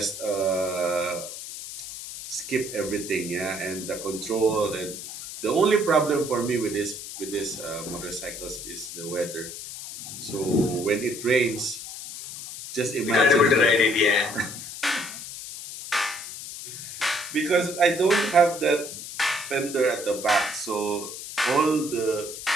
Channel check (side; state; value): left; noise; hiss, 10 dB below the sound